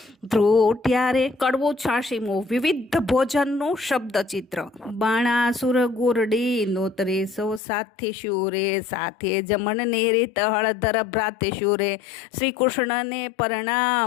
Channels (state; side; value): drops out; right; at 7.6 s